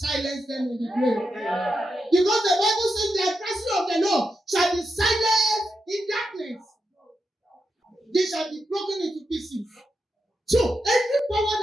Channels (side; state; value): both; normal; correlation 0.86